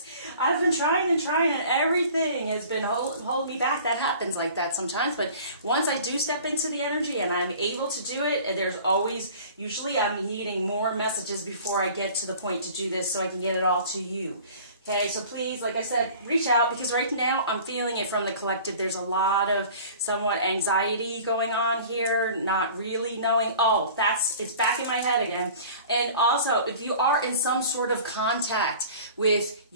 I've been trying and trying, and everything has been holding me back. That happens like that sometimes. But once I do step into the energy and I'm able to do it, and there's always, usually I'm needing more messages before I get to the point to do this so I can get it all to you. Okay, so please, like I said, reach out, because right now I'm feeling it from the collective. There's a lot of somewhat anxiety going on here, not really knowing, oh, it's back in my head again. And also, if you are in some sort of contact with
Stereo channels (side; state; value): both; inverted; correlation -0.45